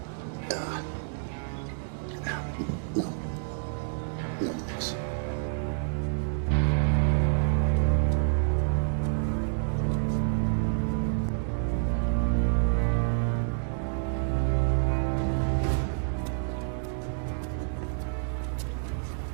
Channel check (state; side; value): silent; left; digital silence